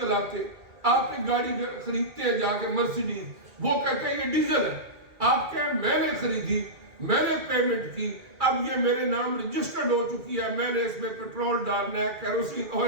چلاتے، آپ ایک گاڑی خریدتے ہیں جا کے مرسیڈیز، وہ کہتے ہیں یہ ڈیزل ہے، آپ کہیں میں نے خریدی، میں نے پیمنٹ کی، اب یہ میرے نام رجسٹرڈ ہو چکی ہے، میں نے اس میں پیٹرول ڈالنا ہے، کیروسین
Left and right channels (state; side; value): late; left; 2.4 ms